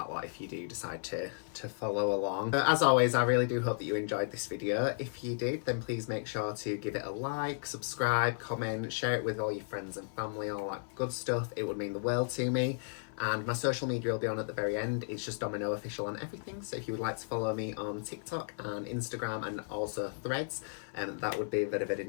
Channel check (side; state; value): right; silent; 55 dB below the other